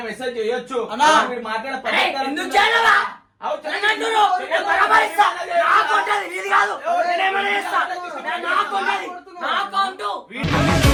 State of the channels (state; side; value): identical; both; correlation 1.00